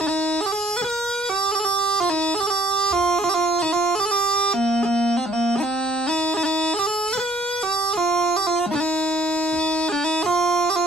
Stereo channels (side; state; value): right; noise; rumble, 28 dB below the sound